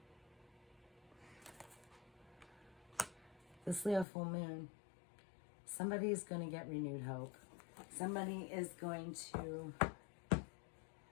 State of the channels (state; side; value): drops out; right; at 4.0 s